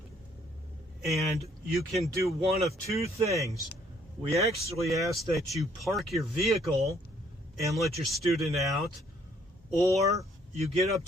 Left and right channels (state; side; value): normal; both; correlation 0.64